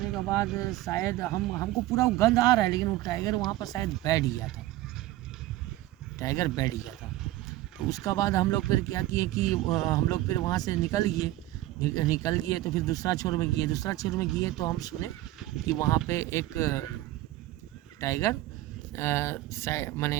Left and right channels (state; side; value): quieter; left; 16.0 dB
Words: के बाद शायद हमको पूरा वो गंध आ रहा है, लेकिन वो टाइगर वहाँ पर शायद बैठ गया था, टाइगर बैठ गया था। तो उसका बाद हम लोग फिर क्या किए कि हम लोग फिर वहाँ से निकल गए। तो फिर दूसरा छोर में गए तो हम सुने कि वहाँ पे एक टाइगर